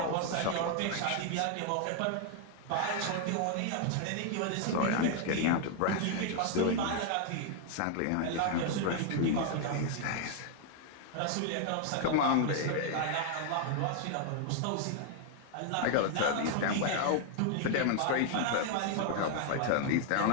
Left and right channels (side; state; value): both; different; correlation 0.00